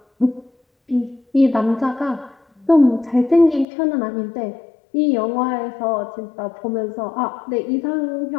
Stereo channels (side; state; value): right; drops out; at 3.7 s